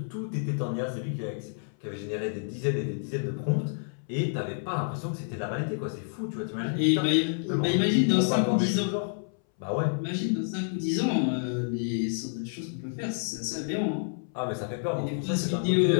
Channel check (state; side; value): silent; right; 59 dB below the other